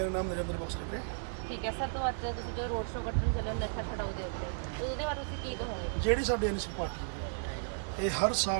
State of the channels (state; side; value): silent; left; digital silence